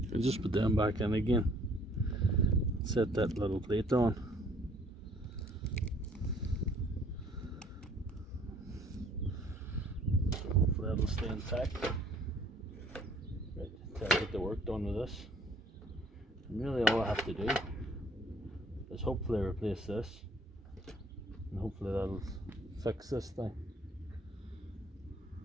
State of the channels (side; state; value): both; normal; correlation 0.59